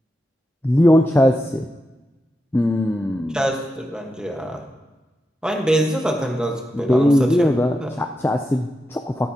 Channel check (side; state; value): both; normal; correlation 0.88